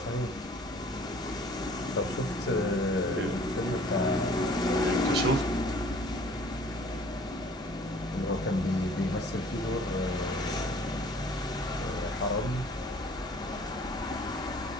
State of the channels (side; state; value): both; normal; correlation 0.53